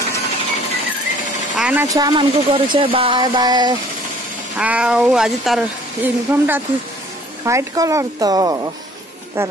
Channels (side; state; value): both; normal; correlation 0.55